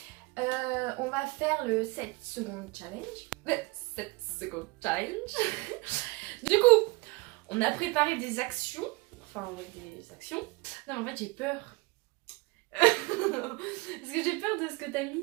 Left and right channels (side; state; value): left; quieter; 24.6 dB